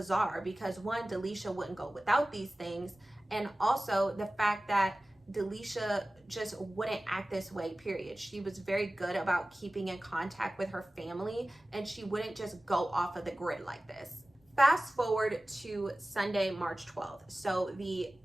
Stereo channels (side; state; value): both; normal; correlation 0.97